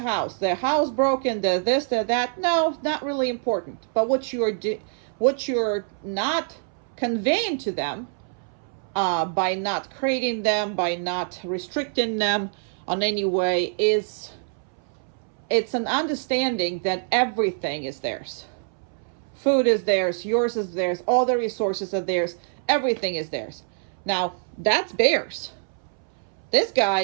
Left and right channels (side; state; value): left; silent; 62 dB below the other